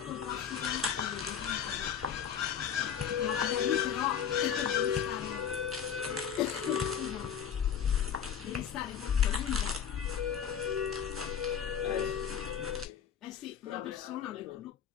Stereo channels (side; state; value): right; quieter; 8.2 dB